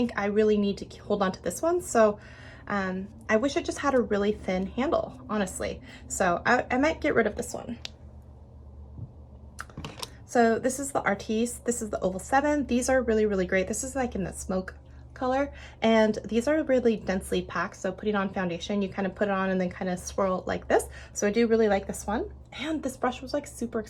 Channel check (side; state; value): both; identical; correlation 1.00